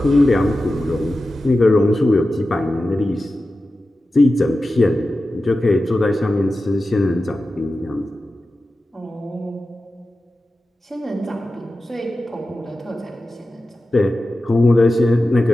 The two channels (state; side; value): normal; both; correlation 0.93